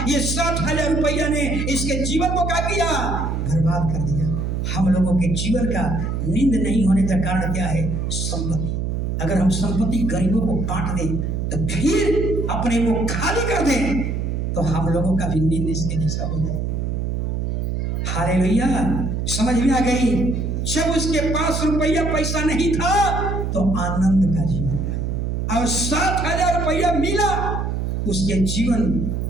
ये 60,000 रुपया ने इसके जीवन को क्या किया, बर्बाद कर दिया। हम लोगों के जीवन का नींद नहीं होने का कारण क्या है, संपत्ति। अगर हम संपत्ति गरीबों को बांट दें तो फिर अपने को खाली कर दें तो हम लोगों का भी नींद इसके जैसा हो जाएगा। हालेलुया, समझ में आ गई। जब उसके पास रुपया पैसा नहीं था तो आनंद का जीवन था, और 60,000 रुपया मिला, उसके जीवन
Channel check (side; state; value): right; noise; hum, 1 dB below the sound